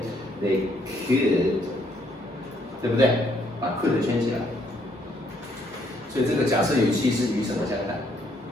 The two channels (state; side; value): normal; both; correlation 0.69